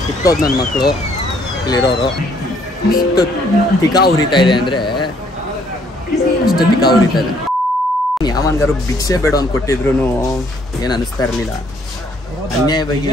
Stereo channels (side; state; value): both; normal; correlation 0.65